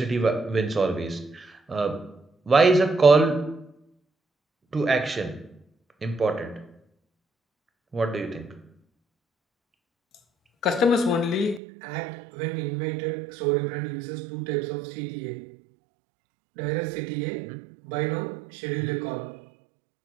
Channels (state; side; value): drops out; left; at 11.6 s